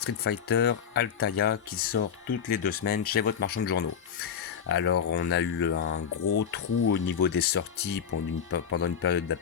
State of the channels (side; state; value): right; quieter; 7.8 dB